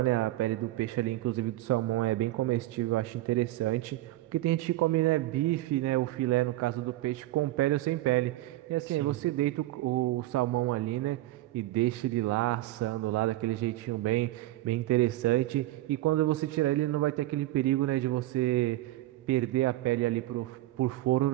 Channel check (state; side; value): quieter; left; 16.5 dB